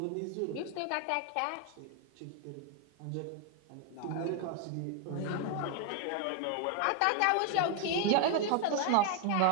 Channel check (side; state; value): both; different; correlation 0.01